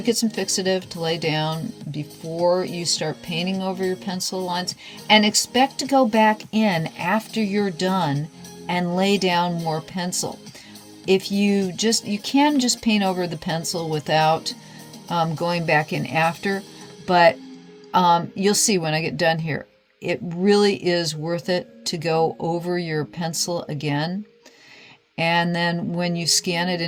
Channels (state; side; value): identical; both; correlation 1.00